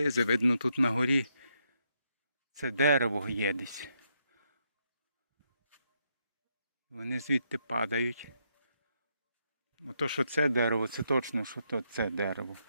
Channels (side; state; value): both; inverted; correlation -0.78